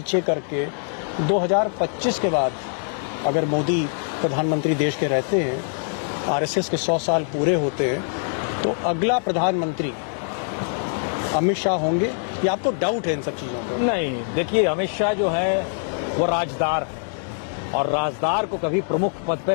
करके 2025 के बाद अगर मोदी प्रधानमंत्री देश के रहते हैं, आरएसएस के 100 साल पूरे होते हैं, तो अगला प्रधानमंत्री अमित शाह होंगे या आपको डाउट है इन सब चीजों पर? नहीं, देखिए अमित शाह जो है वो राजदार है और राजदार को कभी प्रमुख पद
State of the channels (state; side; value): silent; right; digital silence